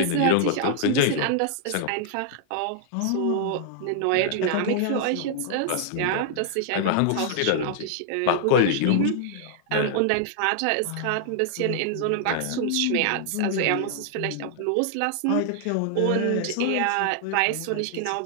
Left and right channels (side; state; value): both; different; correlation -0.01